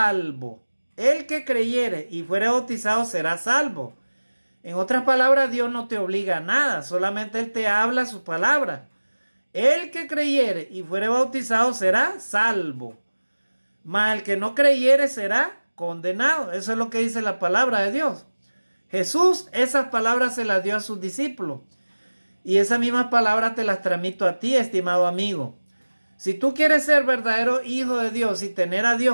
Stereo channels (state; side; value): inverted; both; correlation -1.00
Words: El que creyere y fuere bautizado será salvo. En otras palabras, Dios no te obliga a nada, solamente Él te habla su palabra. El que creyere y fuere bautizado será salvo, mas el que no creyere será condenado. Eso es lo que dice la palabra de Dios. Jesús esas palabras se las dio a sus discípulos y esas mismas palabras te las transmito a ti, estimado amigo. Si tú quieres ser verdadero hijo de Dios y tener a